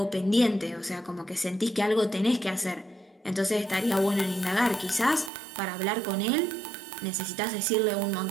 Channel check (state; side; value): drops out; left; at 5.3 s